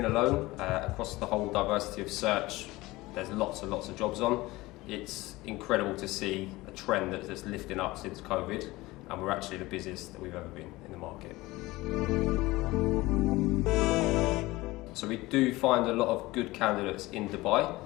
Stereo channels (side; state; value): right; quieter; 20.0 dB